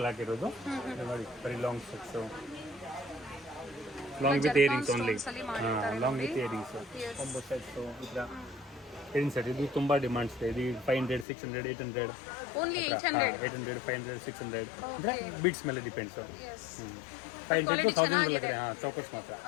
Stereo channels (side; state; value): right; drops out; at 11.2 s